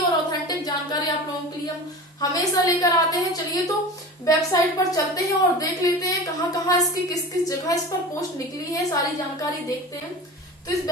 ऑथेंटिक जानकारी आप लोगों के लिए हम हमेशा लेकर आते हैं। चलिए तो वेबसाइट पर चलते हैं और देख लेते हैं कहाँ कहाँ इसकी किस किस जगह इस पर पोस्ट निकली है, सारी जानकारी देखते हैं। तो इस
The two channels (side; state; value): both; normal; correlation 0.33